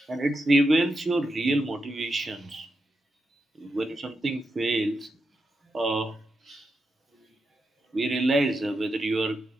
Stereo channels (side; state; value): both; normal; correlation 0.86